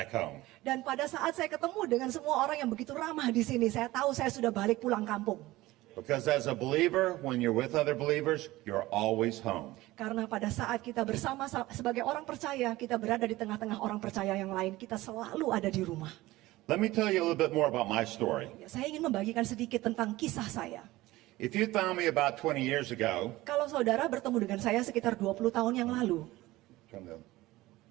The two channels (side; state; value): left; quieter; 18.2 dB